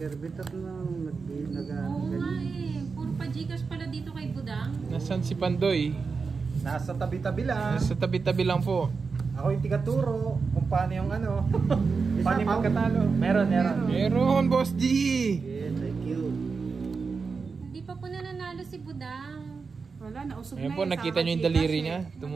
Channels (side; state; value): left; quieter; 4.9 dB